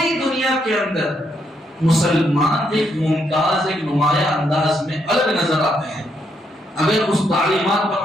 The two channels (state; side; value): normal; both; correlation 0.76